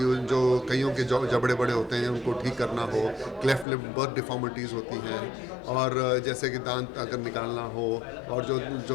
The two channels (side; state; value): right; drops out; at 3.7 s